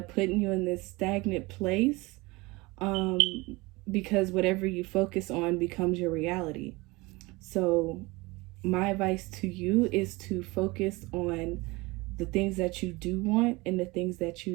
putting you in this stagnant place, um, because whatever you focus on becomes your reality. So my advice to you is to focus on the things that you do want and the things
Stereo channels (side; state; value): left; quieter; 23.2 dB